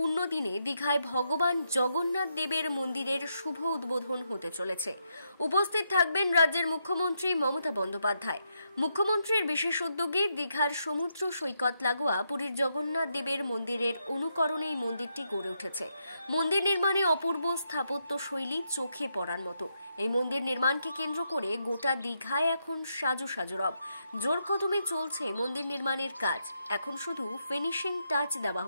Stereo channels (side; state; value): both; inverted; correlation -0.81